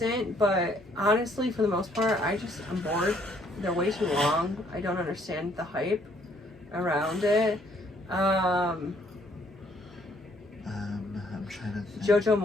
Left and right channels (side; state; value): both; normal; correlation 0.65